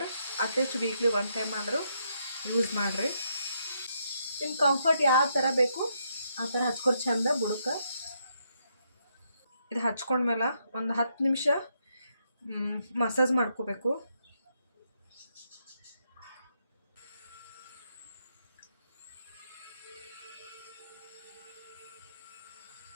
ಅಟ್ಲೀಸ್ಟ್ ವೀಕ್ಲಿ 1 ಟೈಮ್ ಆದರೂ ಯೂಸ್ ಮಾಡಿರಿ. ನಿಮ್ಮ ಕಂಫರ್ಟ್ ಯಾವ ಥರ ಬೇಕು ಆ ಥರ ಹಚ್ಕೊರಿ ಚಂದ ಬುಡಕ್ಕೆ. ಇದು ಹಚ್ಕೊಂಡ್ಮೇಲೆ ಒಂದು 10 ನಿಮಿಷ ಮಸಾಜ್ ಮಾಡ್ಕೋಬೇಕು.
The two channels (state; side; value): inverted; both; correlation -0.77